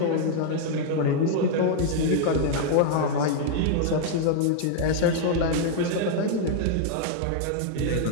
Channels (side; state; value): both; different; correlation -0.01